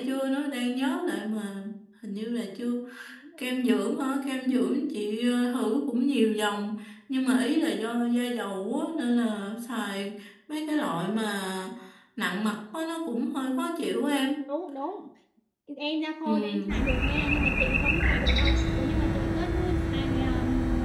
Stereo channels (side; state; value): both; identical; correlation 1.00